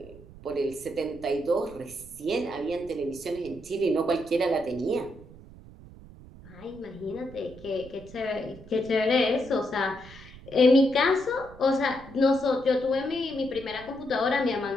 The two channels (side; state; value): right; noise; rumble, 19 dB below the sound